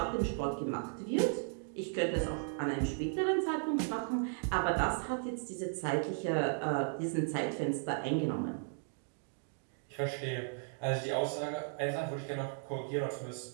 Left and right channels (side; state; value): left; silent; 54 dB below the other